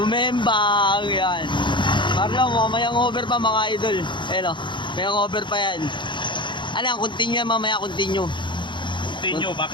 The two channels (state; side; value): late; right; 0.23 ms